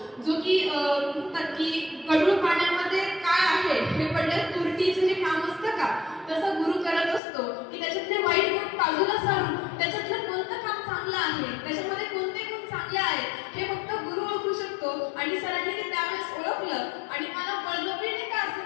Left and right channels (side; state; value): right; drops out; at 7.2 s